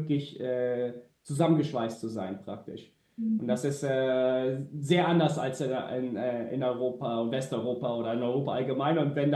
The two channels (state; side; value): identical; both; correlation 1.00